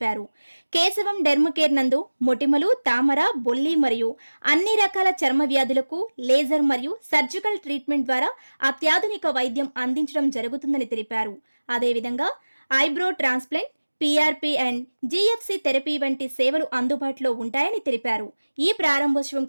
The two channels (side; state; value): both; inverted; correlation -1.00